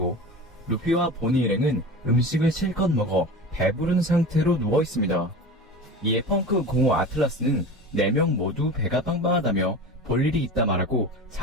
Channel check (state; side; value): normal; both; correlation 0.32